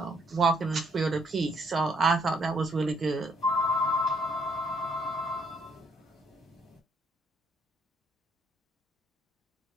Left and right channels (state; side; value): normal; both; correlation 0.68